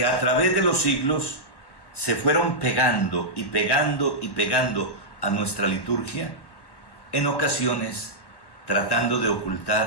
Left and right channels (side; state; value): right; late; 1.1 ms